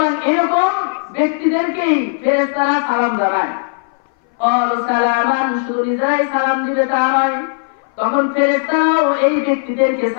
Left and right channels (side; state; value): right; silent; 62 dB below the other